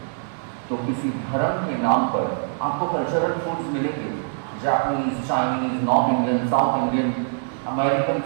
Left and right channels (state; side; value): silent; left; digital silence